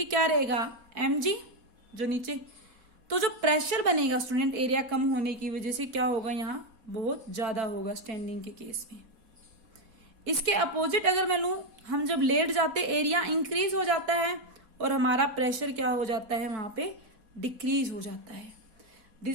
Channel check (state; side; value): late; left; 4.1 ms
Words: क्या रहेगा, mg, जो नीचे, तो जो प्रेशर बनेगा स्टूडेंट एरिया कम होने की वजह से क्या होगा, यहाँ बहुत ज्यादा होगा स्टैंडिंग के केस में। इसके अपोजिट अगर मैं लूं, हम जब लेट जाते एरिया इंक्रीज हो जाता है और हमारा प्रेशर क्या हो जाता है, वहां पे डिक्रीज हो जाता है।